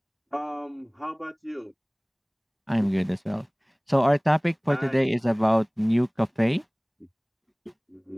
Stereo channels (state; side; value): identical; both; correlation 1.00